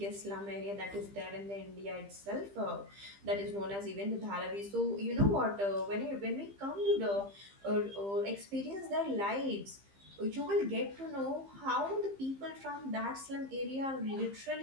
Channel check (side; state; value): left; late; 15 ms